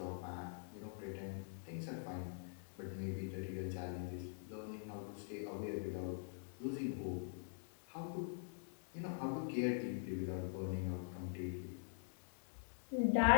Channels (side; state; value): right; silent; digital silence